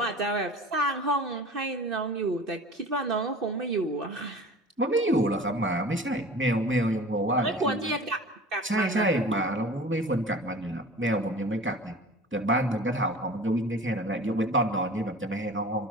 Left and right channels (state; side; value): normal; both; correlation 0.40